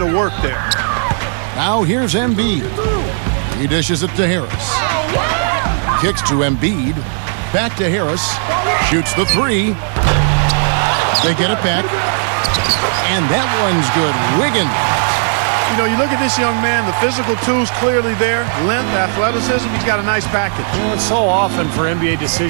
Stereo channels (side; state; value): left; silent; digital silence